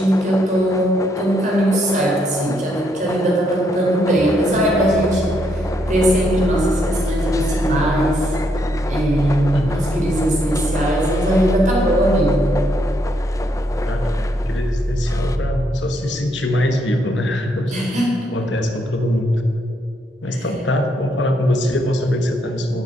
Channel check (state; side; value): normal; both; correlation 0.75